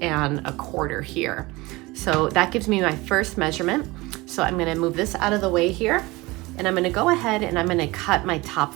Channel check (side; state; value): left; quieter; 21.9 dB